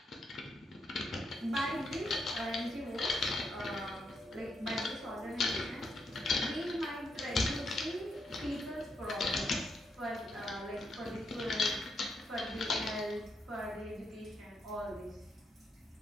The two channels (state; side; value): normal; both; correlation 0.79